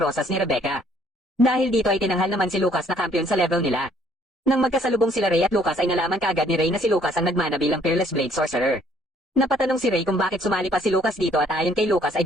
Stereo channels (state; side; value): normal; both; correlation 0.63